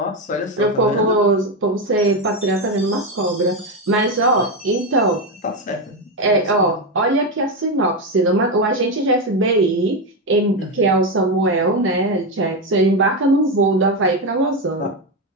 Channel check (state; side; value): normal; both; correlation 0.10